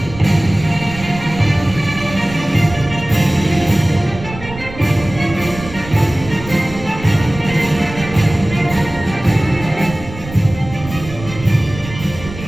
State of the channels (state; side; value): noise; right; rumble, 13 dB below the sound